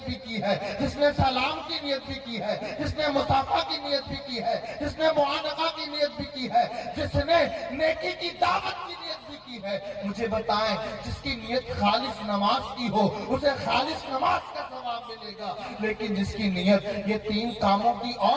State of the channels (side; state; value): both; identical; correlation 1.00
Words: بھی کی ہے، جس نے سلام کی نیت بھی کی ہے، جس نے مصافحہ کی نیت بھی کی ہے، جس نے معانقہ کی نیت بھی کی ہے، جس نے نیکی کی دعوت کی نیت بھی کی ہے۔ مجھے بتائیں، جس کی نیت خالص نماز کی ہو اسے خالص نماز کا ثواب ملے گا، لیکن جس کی نیت یہ 3 کاموں کی